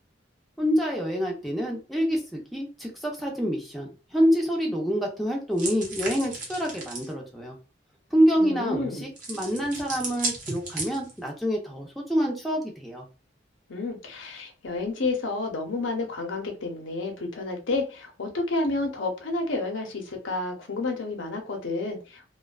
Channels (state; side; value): normal; both; correlation 0.70